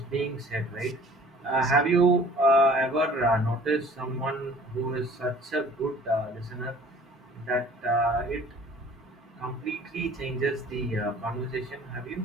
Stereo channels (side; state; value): both; normal; correlation 0.51